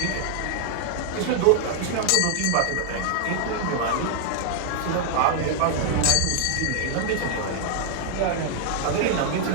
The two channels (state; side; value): different; both; correlation 0.00